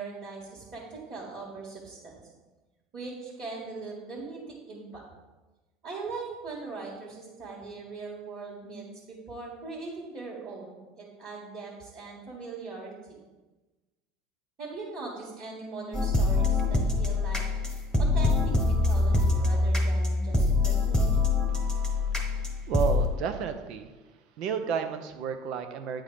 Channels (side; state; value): both; normal; correlation 0.56